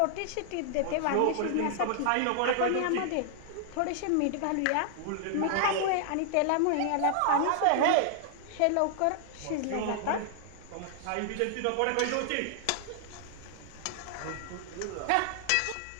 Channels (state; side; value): different; both; correlation 0.00